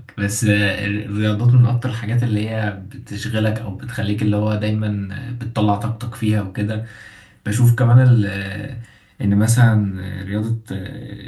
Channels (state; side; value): identical; both; correlation 1.00